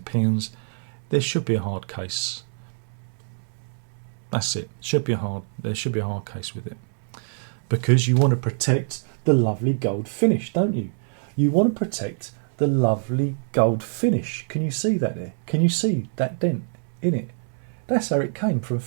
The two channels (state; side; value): silent; left; 62 dB below the other